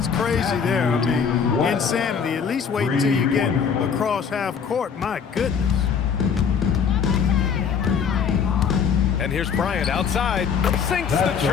crazy there. I mean, insanity. At least wait until you get across half court. My goodness. And here's Bryant outside. Sinks the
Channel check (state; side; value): quieter; right; 6.8 dB